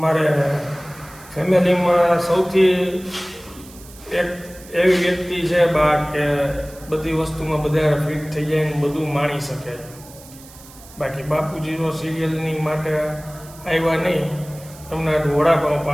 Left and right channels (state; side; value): noise; right; hiss, 21 dB below the sound